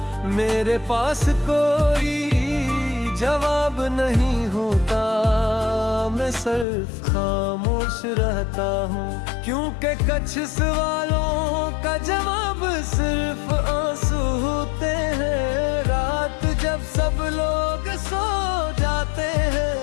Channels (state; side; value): drops out; right; at 6.7 s